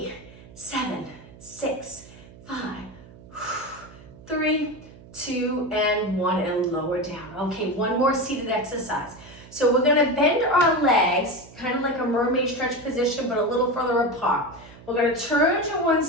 7, 6, 5, 3, 2, and 1, and lower down. Okay, 1 more seated exercise. So we're gonna bend our legs, kind of like a mermaid stretch position, but a little further apart. We're gonna turn to one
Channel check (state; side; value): noise; right; hum, 20 dB below the sound